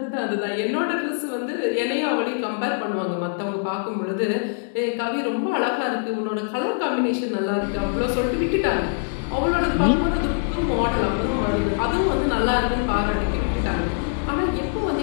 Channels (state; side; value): silent; right; digital silence